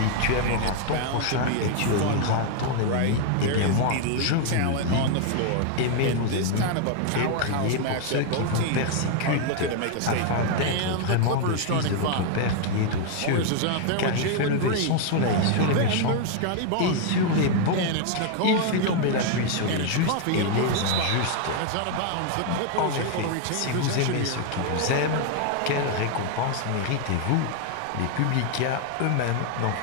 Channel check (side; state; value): both; different; correlation 0.00